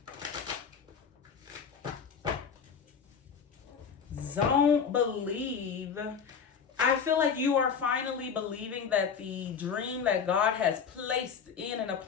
don't believe. I feel like you are finally believing that the dream that God has placed in and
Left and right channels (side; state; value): right; quieter; 6.5 dB